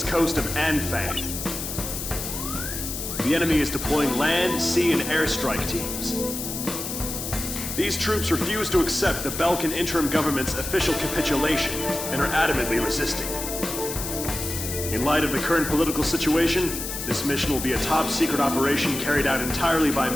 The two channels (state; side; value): noise; left; hiss, 6 dB below the sound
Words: coast of Anfang. The enemy is deploying land, sea, and airstrike teams. These troops refuse to accept the Belkan interim government's official capitulation and are adamantly resisting. In light of the current political situation, this mission will be a top-secret operation carried out entirely by